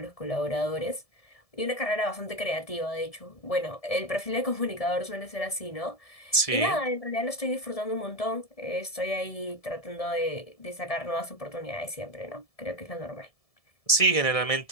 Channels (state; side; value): late; right; 1.7 ms